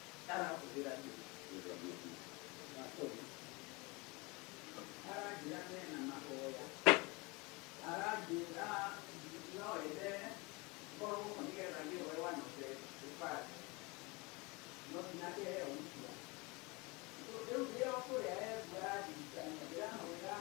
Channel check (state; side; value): quieter; right; 26.3 dB